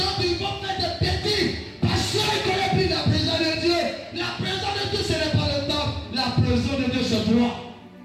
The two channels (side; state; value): both; identical; correlation 1.00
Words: ils vont faire des bêtises parce qu'ils connaissent plus la présence de Dieu. La présence de Dieu, ce n'est pas le temps. La présence de Dieu, c'est toi.